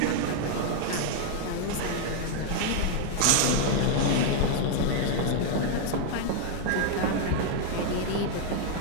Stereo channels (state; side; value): different; both; correlation 0.00